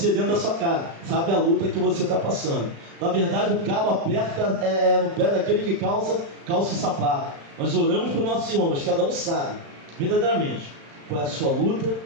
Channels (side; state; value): left; late; 36 ms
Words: dentro da sua casa, sabe a luta que você está passando. Na verdade, o calo aperta no pé daquele que calça o sapato. Nós oramos para os nossos irmãos, cada um sabe, verdadeiramente, qual é a sua luta